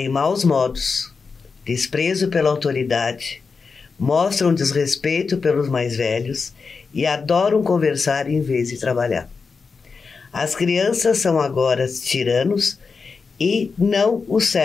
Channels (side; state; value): right; quieter; 4.9 dB